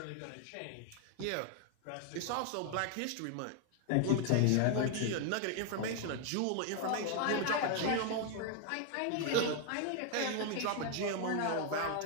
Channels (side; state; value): both; different; correlation 0.00